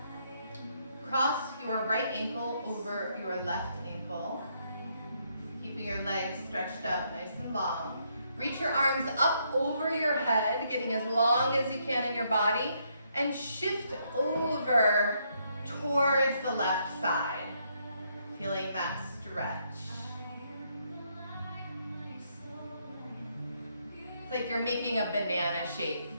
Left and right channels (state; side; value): inverted; both; correlation -0.74